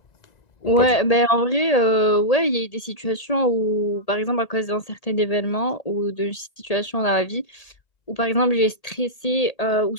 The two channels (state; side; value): late; right; 1.8 ms